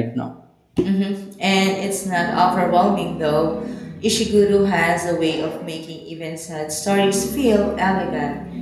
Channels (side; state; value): both; identical; correlation 1.00